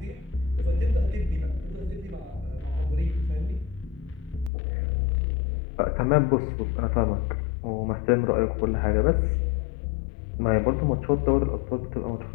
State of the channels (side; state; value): right; drops out; at 4.5 s